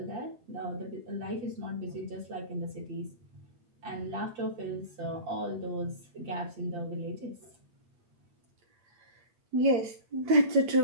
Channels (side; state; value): left; late; 8.7 ms